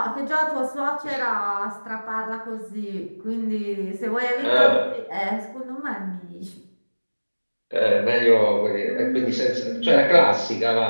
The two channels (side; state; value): both; inverted; correlation -1.00